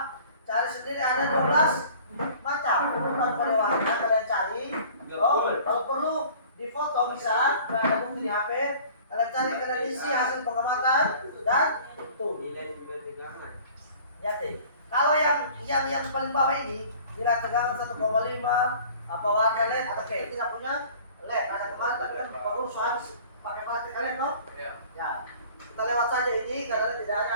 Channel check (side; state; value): both; inverted; correlation -0.48